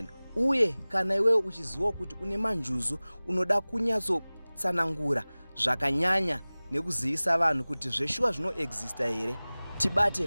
Uye kana iwe uchiziva kuti une manjuzu, unoda kunyatsotsanangura zvakanyanya nekuzivisa vanhu kuti zveshuwa zvinoexista here,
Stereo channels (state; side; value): inverted; both; correlation -0.99